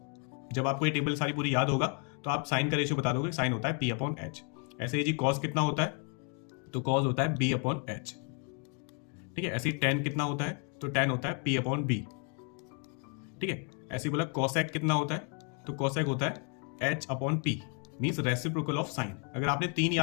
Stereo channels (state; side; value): quieter; right; 37.1 dB